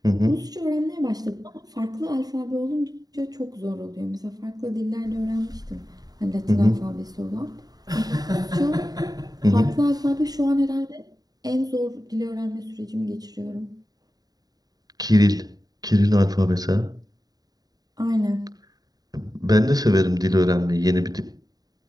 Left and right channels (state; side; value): late; left; 0.18 ms